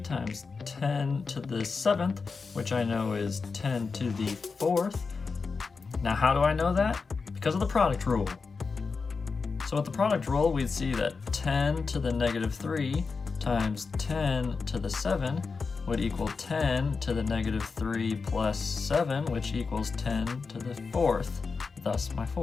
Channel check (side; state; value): right; quieter; 4.7 dB